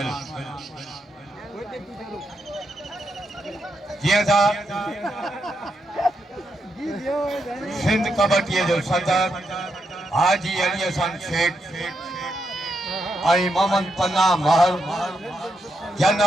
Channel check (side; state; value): both; normal; correlation 0.82